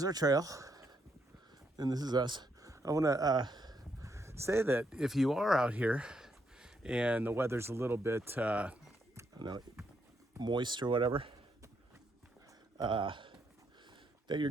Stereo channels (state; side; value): normal; both; correlation 0.77